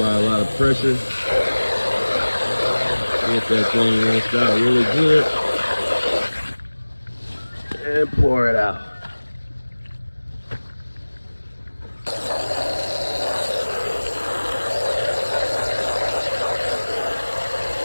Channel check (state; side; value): inverted; both; correlation -1.00